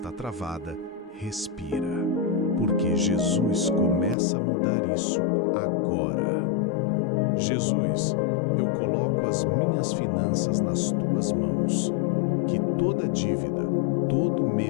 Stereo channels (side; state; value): right; drops out; at 4.2 s